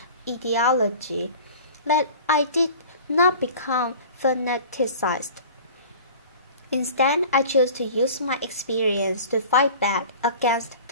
ideology, that I did not become fanaticized. Instead, I chose to use my experience to fight back against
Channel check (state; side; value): inverted; both; correlation -0.41